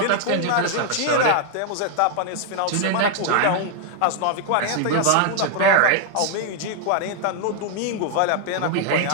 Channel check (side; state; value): both; different; correlation 0.00